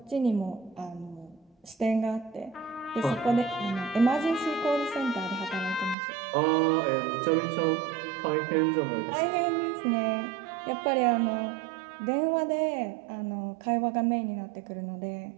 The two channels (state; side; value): drops out; left; at 6.0 s